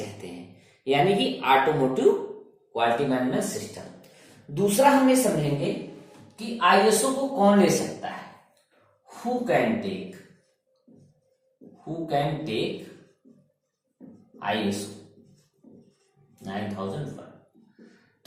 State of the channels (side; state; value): both; identical; correlation 1.00